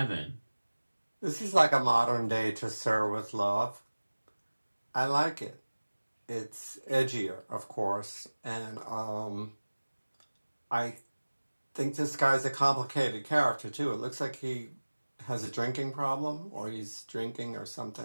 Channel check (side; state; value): both; inverted; correlation -1.00